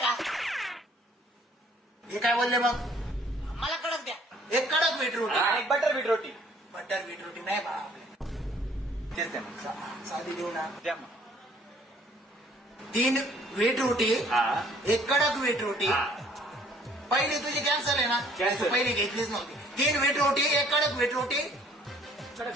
हे काय बोलले मग? मला कडक द्या. एक कडक व्हीट रोटी. एक बटर बीट रोटी. बटर व्हीट रोटी नाही बा. तेच द्या मग. साधी देऊ ना. द्या मग. 3 व्हीट रोटी, हा. एक कडक व्हीट रोटी. पहिली तुझी कॅन्सल आहे ना? Cancel. तू पहिली घेतलीच नव्हती. 3 व्हीट रोटी, एक कडक व्हीट रोटी,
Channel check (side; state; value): both; normal; correlation 0.59